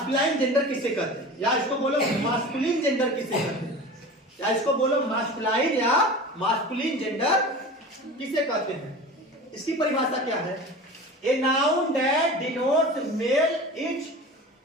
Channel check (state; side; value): normal; both; correlation 0.34